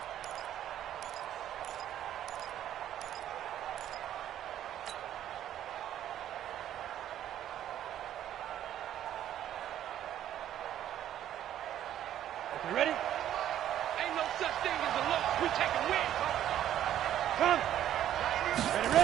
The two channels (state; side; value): quieter; left; 11.4 dB